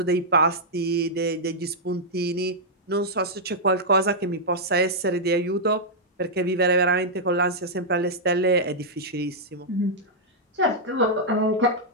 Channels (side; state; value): both; normal; correlation -0.07